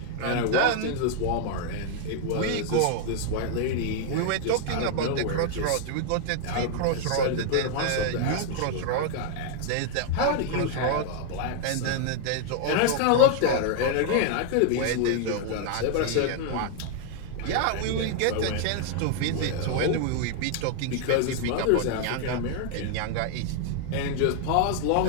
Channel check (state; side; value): different; both; correlation 0.00